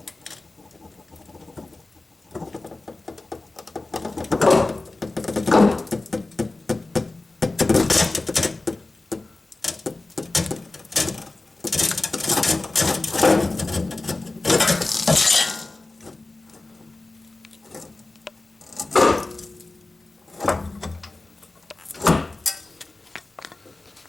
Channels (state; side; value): quieter; right; 3.1 dB